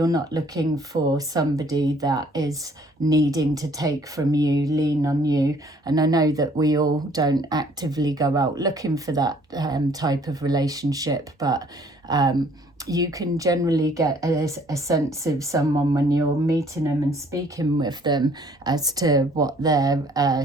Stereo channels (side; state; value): both; normal; correlation 0.59